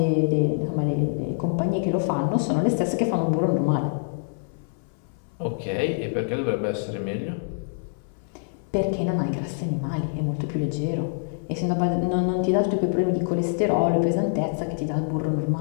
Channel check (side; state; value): right; silent; 59 dB below the other